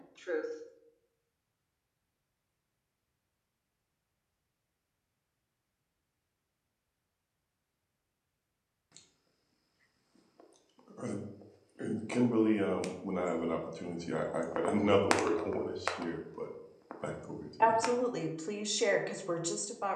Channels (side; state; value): both; identical; correlation 1.00